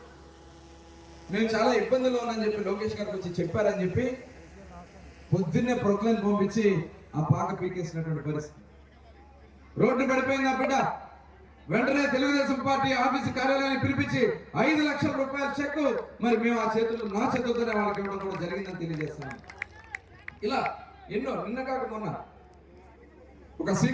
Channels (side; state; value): both; identical; correlation 1.00